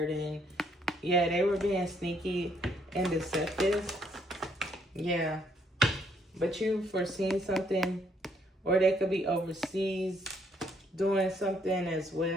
Yeah, they were being sneaky and deceptive. Yeah. But you foreseen something, or they could be overseas doing something as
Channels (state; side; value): normal; both; correlation 0.69